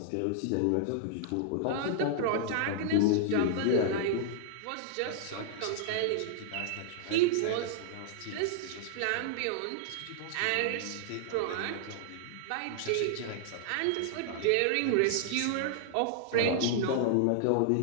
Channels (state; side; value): different; both; correlation -0.01